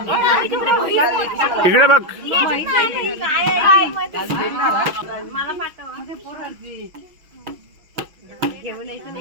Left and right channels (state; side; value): late; left; 6.4 ms